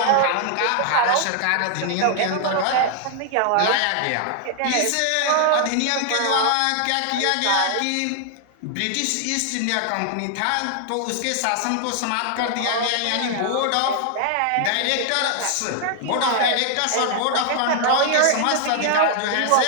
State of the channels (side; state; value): both; different; correlation 0.00